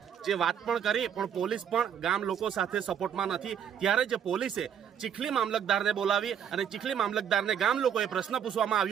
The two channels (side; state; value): left; quieter; 8.6 dB